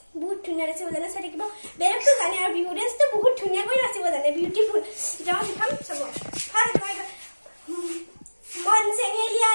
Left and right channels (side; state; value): both; inverted; correlation -1.00